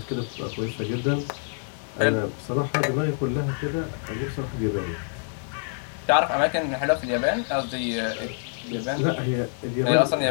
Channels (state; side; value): silent; right; digital silence